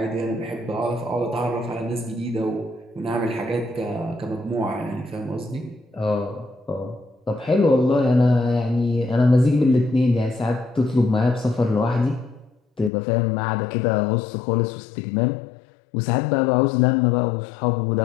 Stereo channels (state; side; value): drops out; right; at 12.9 s